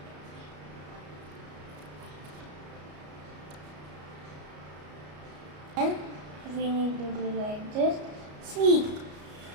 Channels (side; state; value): left; late; 33 ms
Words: And we need to do like this. See,